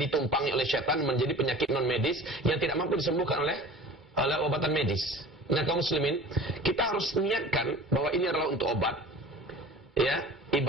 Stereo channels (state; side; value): normal; both; correlation 0.41